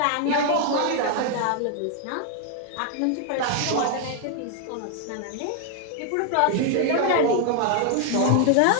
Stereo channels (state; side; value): different; both; correlation 0.00